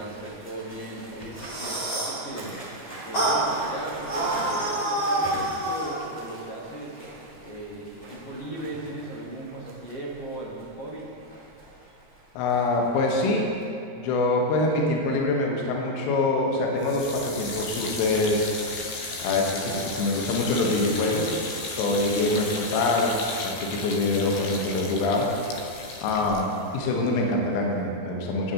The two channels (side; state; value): right; late; 16 ms